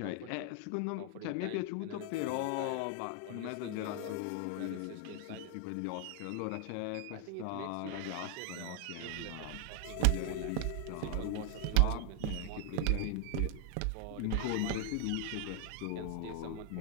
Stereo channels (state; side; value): different; both; correlation 0.00